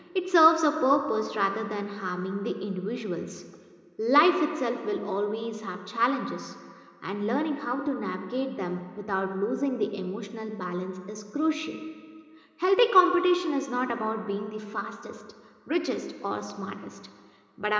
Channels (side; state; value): both; identical; correlation 1.00